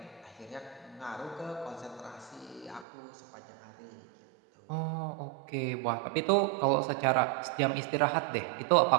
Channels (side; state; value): left; drops out; at 2.9 s